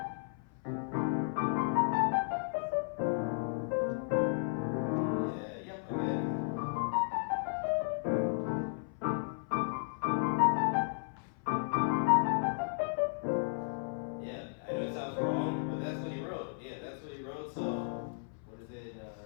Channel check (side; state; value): right; silent; 55 dB below the other